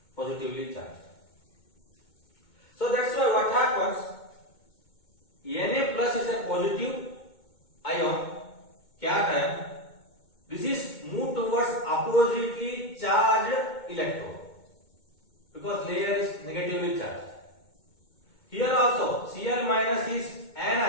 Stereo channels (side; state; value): right; late; 2.2 ms